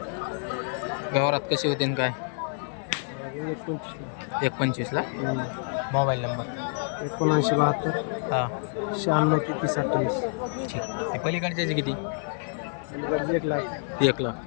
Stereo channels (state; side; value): silent; right; 60 dB below the other